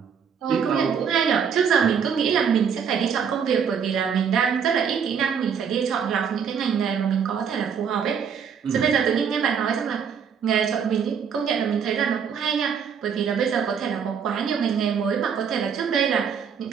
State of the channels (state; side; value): quieter; left; 7.1 dB